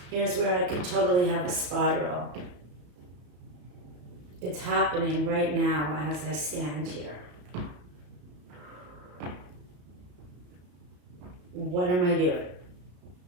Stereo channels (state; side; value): late; left; 34 ms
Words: here's where I could totally have a spiral. It's happening right now as I stand here. What am I doing?